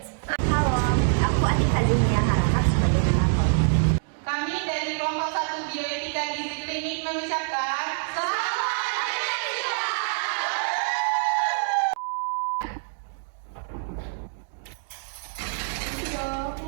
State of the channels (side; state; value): left; silent; digital silence